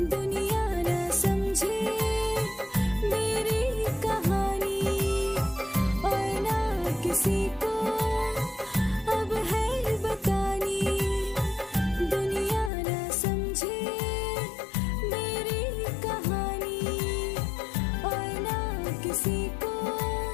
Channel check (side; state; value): right; drops out; at 12.7 s